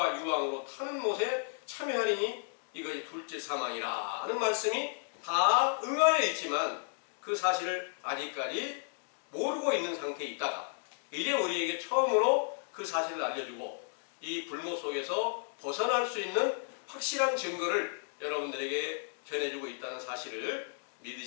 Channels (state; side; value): silent; right; 55 dB below the other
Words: 유황으로 타는 못에 참여하리니 이것이 둘째 사망이라 하는 말씀이 다 응하여 있지만 그 사실을 아직까지 모르고 있는 상태에 있다가 이제 우리에게 처음으로 그 사실을 알려주고 이 불모 속에서 벗어날 수 있는 확실한 증거를 여러분들에게 전해주고 있다는 사실을